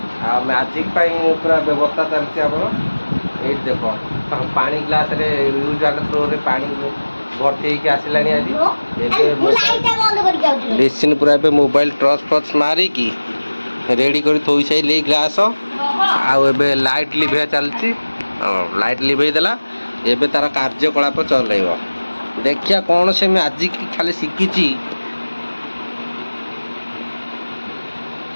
मैजिक पूरा व्यवस्था चलती आम ये देख पानी ग्लास रे यूज वाटर थ्रो रे पानी भर्ती होकर आसलानी आज लिसिन पूरा मोबाइल टर्च फर्च मारिकी रेडी कर थोई सारे ग्लास आउ लाइट लिभे चलती लाइट लिभे देला एबे तार कार्यकलाप चलेब देखिया कौन से मैजिक खाली शिखी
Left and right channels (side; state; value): both; inverted; correlation -1.00